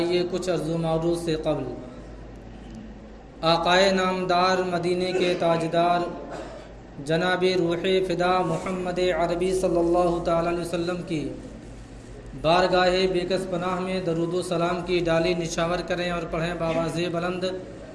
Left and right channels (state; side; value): identical; both; correlation 1.00